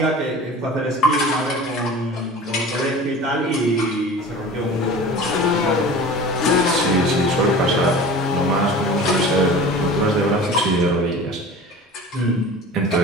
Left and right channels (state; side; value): normal; both; correlation 0.38